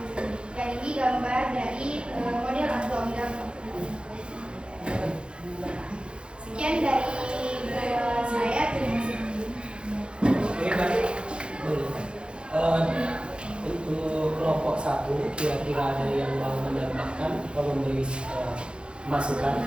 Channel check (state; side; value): late; left; 0.055 ms